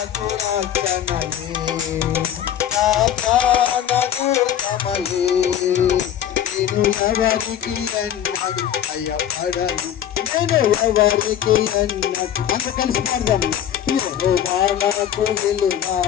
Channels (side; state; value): right; quieter; 10.3 dB